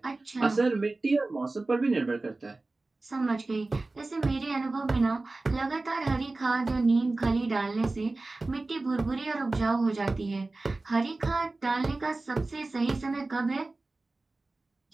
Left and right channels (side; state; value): left; quieter; 3.2 dB